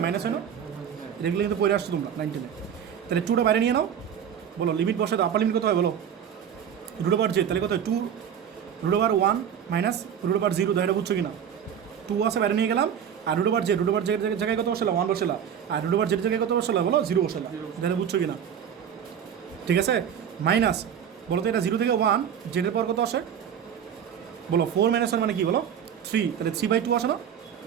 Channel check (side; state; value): left; quieter; 8.6 dB